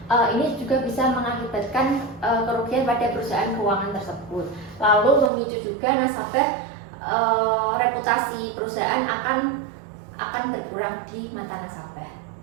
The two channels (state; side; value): drops out; left; at 5.3 s